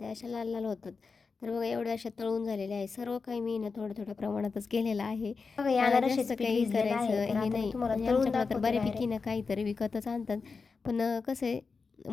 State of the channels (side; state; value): right; quieter; 4.7 dB